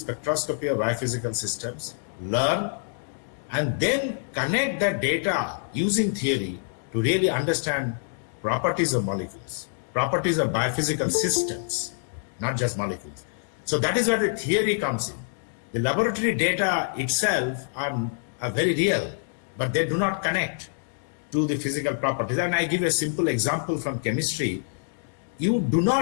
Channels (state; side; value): silent; right; digital silence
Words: of biophysical systems, learn, and then connect that data using theory to really understand properties of molecules, properties of biophysical systems, not just molecules. So that is where the theory comes in. The laboratory data itself are very real, but they do not connect to the physical properties. And I give a simple example from chemistry. You do